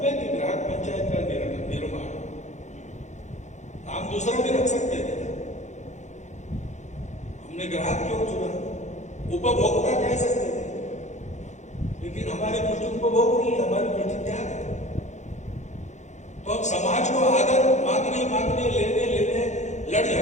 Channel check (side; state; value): right; late; 0.34 ms